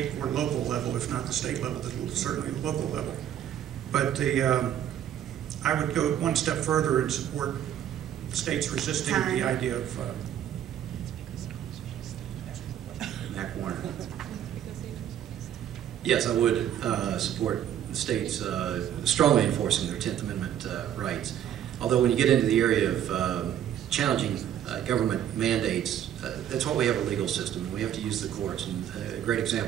or local level, if not the state level, certainly the local level. But I would go one step further and support states resisting the idea of Mac Warner. Yes, I would support the states strongly enforcing their 10th Amendment rights. Although when you get into the area of challenging government mandates, that's why we have a legal system. We have to use the courts. And a great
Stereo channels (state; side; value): quieter; left; 10.4 dB